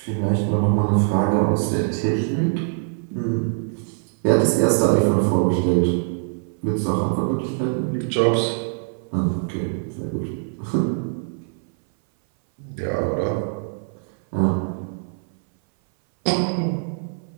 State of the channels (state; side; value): silent; left; 60 dB below the other